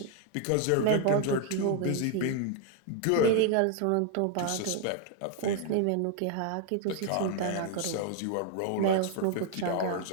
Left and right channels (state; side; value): different; both; correlation 0.00